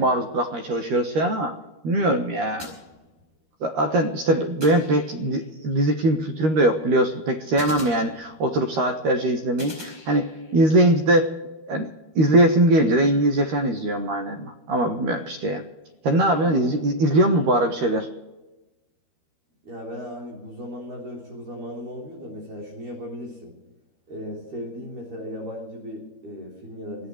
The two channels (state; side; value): late; left; 13 ms